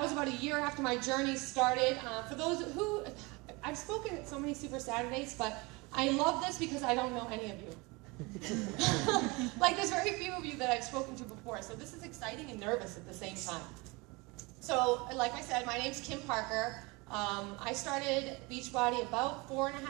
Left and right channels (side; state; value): left; quieter; 25.7 dB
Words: was about a year after my journey started. For those who, I've spoken at so many Super Saturdays, but I love this because I don't know any of you. Like there's very few of you that I've spoken to before, so this is exciting and nervous at the same time. So, like I said, my name's Kim Parker. I started Beachbody about